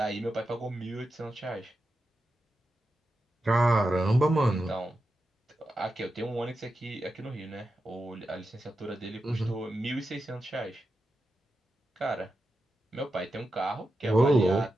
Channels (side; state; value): both; normal; correlation 0.89